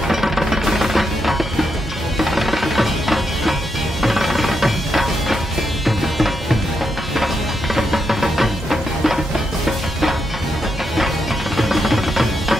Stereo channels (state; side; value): normal; both; correlation 0.82